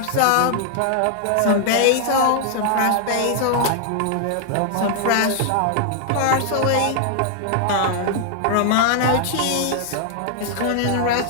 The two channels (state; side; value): different; both; correlation 0.00